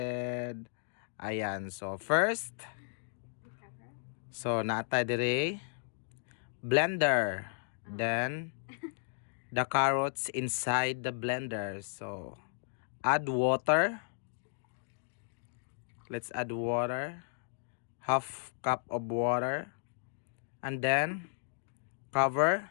Ayan, so first, so natay dire blender, then the carrots inside the blender. So add water, let's add water, half cup of water, and then cover.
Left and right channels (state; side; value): silent; right; digital silence